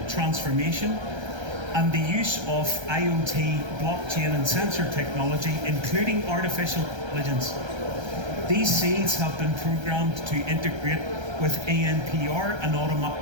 transformation and the use of IoT, blockchain and sensor technology, including artificial intelligence. These seeds have been programmed to integrate with ANPR and automatic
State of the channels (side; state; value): left; late; 1.3 ms